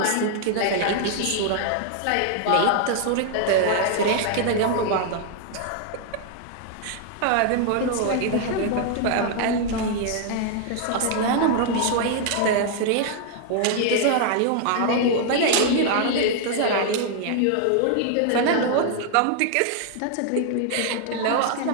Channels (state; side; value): different; both; correlation 0.00